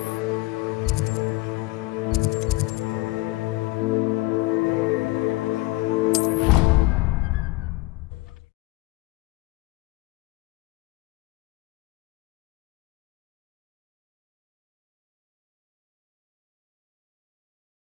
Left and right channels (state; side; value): quieter; right; 21.2 dB